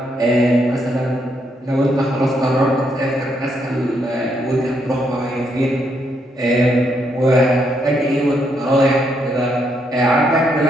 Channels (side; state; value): both; normal; correlation 0.76